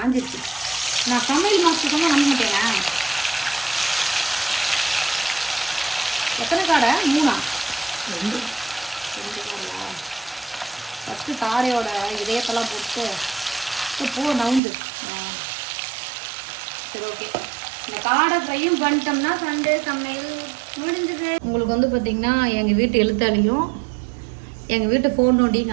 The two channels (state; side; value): drops out; left; at 14.6 s